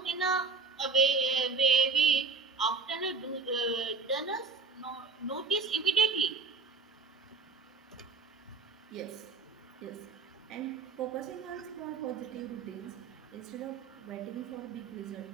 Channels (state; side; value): quieter; left; 4.3 dB